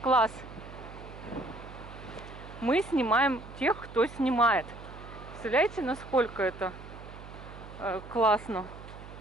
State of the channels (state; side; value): noise; right; hum, 15 dB below the sound